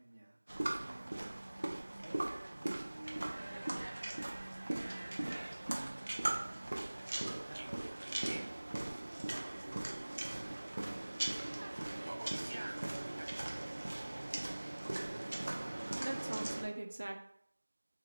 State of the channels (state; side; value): inverted; both; correlation -1.00